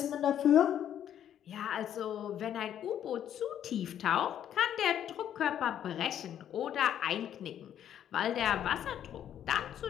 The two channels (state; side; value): quieter; right; 10.2 dB